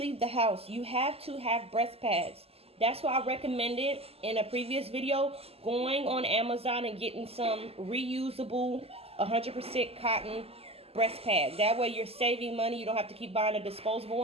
the house, you have to have breast pads. That's why I recommended in a previous video going on Amazon and getting some reusable 100% cotton breast pads. That way you're saving money. You don't have to keep buying the disposable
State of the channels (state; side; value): late; left; 0.29 ms